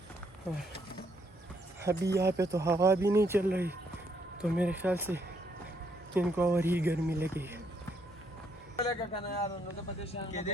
और अभी यहाँ पे तो हवा भी नहीं चल रही, तो मेरे ख्याल से इनको और ही गर्मी लगी है। Oh,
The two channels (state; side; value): normal; both; correlation 0.72